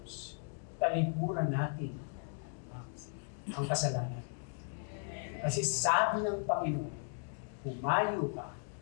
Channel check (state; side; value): silent; right; 53 dB below the other